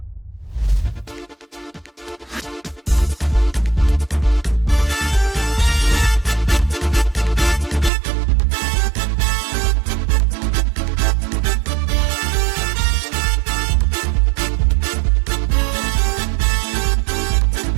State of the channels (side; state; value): left; drops out; at 7.9 s